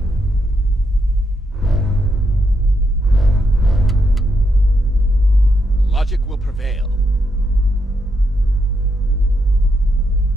Logic will prevail.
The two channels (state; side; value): normal; both; correlation 0.80